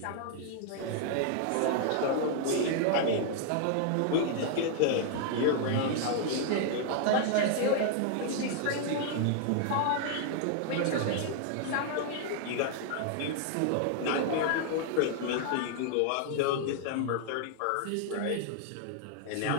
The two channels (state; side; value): different; both; correlation 0.00